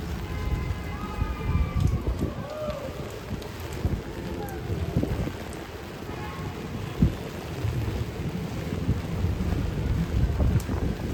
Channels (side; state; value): both; identical; correlation 1.00